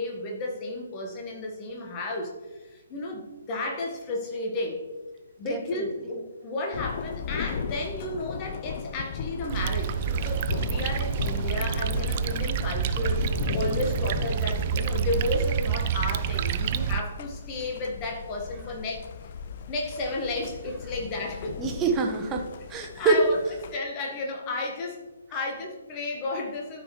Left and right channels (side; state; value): both; inverted; correlation -0.45